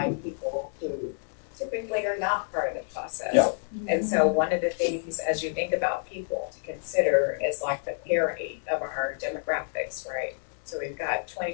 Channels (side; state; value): right; silent; 59 dB below the other